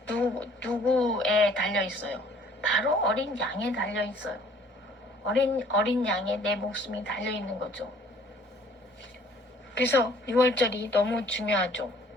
누구에 달려 있어요? 바로 어린 양에 달려 있어요. 어린 양에 내 목숨이 달려 있는 거죠. 그래서 6월절이 너무 중요하죠.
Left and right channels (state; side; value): normal; both; correlation 0.56